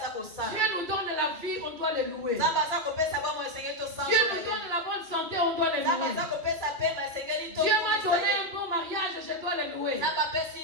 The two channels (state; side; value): late; left; 2.2 ms